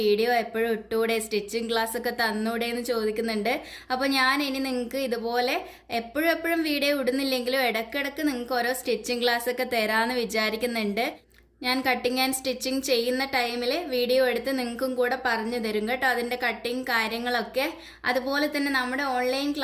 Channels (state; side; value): identical; both; correlation 1.00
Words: എപ്പോഴും ഇട്ടൂടെ, സ്റ്റിച്ചിങ് ക്ലാസ് ഒക്കെ തന്നൂടെ എന്ന് ചോദിക്കുന്നുണ്ട്. അപ്പോൾ ഞാൻ ഇനി നിങ്ങൾക്ക് ഇതുപോലെ എപ്പോഴും എപ്പോഴും വീഡിയോ ഇടുന്നില്ലെങ്കിലും ഇടയ്ക്കിടയ്ക്ക് നിങ്ങൾക്ക് ഓരോ സ്റ്റിച്ചിങ് ക്ലാസ് ഒക്കെ തരാമെന്ന് വിചാരിക്കുന്നുണ്ട്. ഞാൻ കട്ടിങ് ആൻഡ് സ്റ്റിച്ചിങ് ചെയ്യുന്ന ടൈമിൽ വീഡിയോ എടുത്ത് നിങ്ങൾക്കും കൂടെ പറഞ്ഞു തരും കേട്ടോ, അതിൻ്റെ കട്ടിങ് കാര്യങ്ങളൊക്കെ. അതുപോലെ തന്നെ നമ്മുടെ ഓൺലൈൻ